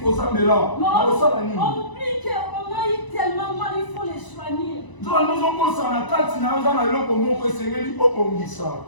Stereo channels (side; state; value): right; late; 1.0 ms